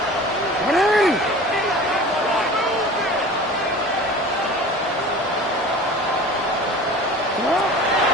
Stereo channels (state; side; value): normal; both; correlation 0.39